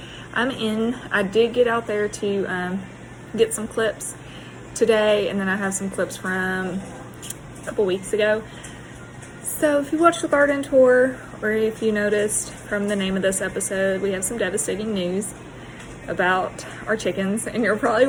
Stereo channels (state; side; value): identical; both; correlation 1.00